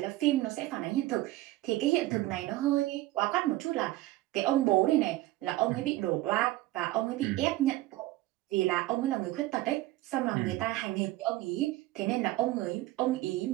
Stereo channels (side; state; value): left; quieter; 17.3 dB